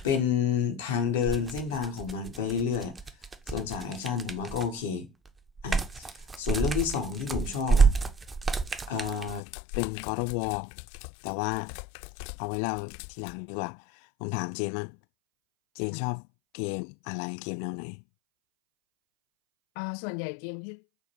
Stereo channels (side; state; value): right; drops out; at 9.4 s